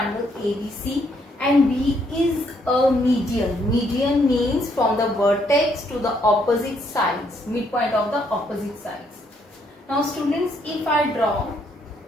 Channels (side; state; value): both; normal; correlation 0.71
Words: ABC, and B is a median. Median means from the vertex to the opposite sides, midpoint of the opposite sides. Now students, if I draw,